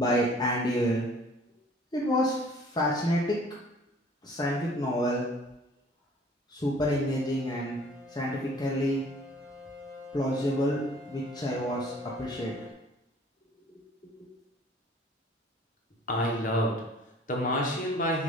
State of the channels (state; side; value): normal; both; correlation 0.53